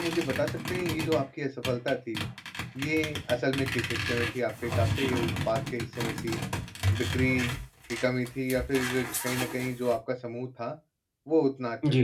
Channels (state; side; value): identical; both; correlation 1.00